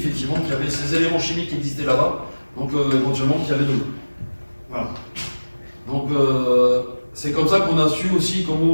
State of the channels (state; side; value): inverted; both; correlation -1.00